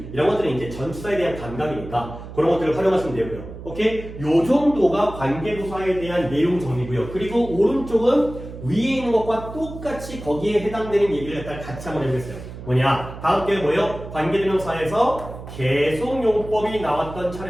이런 것들은 이제 전치사에 대한 감각이니까 그런 것들을 활용하시면 되고요. 오케이? 요 정도가 관계부사에 대한 내용 정리고요. 그리고 오른쪽은 위에 있는 것과 똑같이 거기에 해당되는 얘기를 같이 한번 해보겠어요. 뭐냐? 다음 게 뭐예요? 관계대명사에서 계속용법이 나왔던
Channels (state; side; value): noise; right; hum, 12 dB below the sound